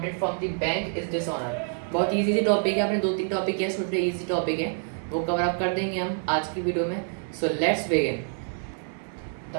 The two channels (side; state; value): left; silent; 56 dB below the other